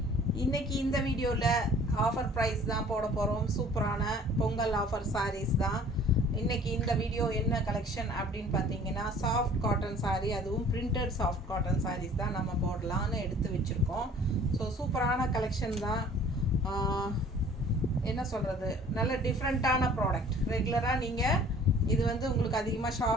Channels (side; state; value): both; normal; correlation 0.51